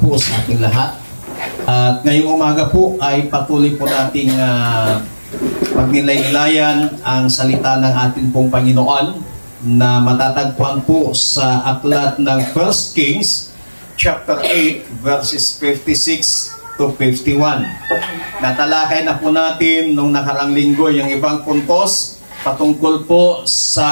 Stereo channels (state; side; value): inverted; both; correlation -1.00